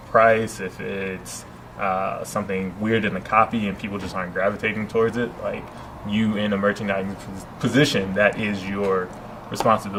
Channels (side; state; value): both; identical; correlation 1.00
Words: price, if it's something weird in the copy and people just aren't gravitating towards it, like you in a merchandising position, that is your